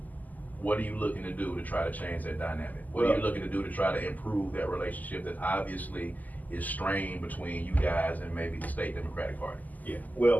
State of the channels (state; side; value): late; right; 0.081 ms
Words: what are you looking to do to try to change that dynamic? What are you looking to do to try to improve that relationship that obviously is strained between you guys and maybe the state Democratic Party? Yeah,